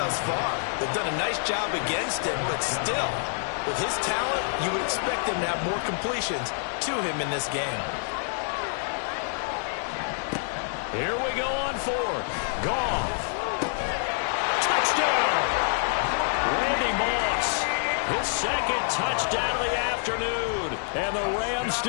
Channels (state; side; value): silent; right; 60 dB below the other